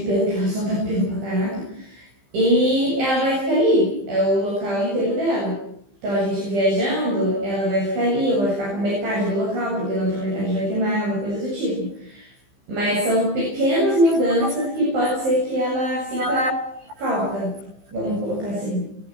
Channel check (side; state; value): left; late; 15 ms